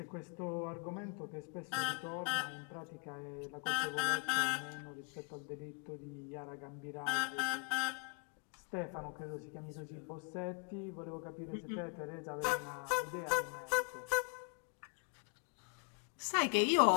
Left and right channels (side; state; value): right; quieter; 35.5 dB